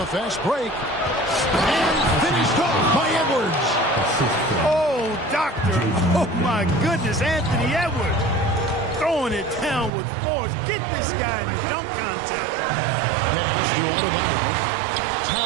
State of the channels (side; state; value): left; drops out; at 9.9 s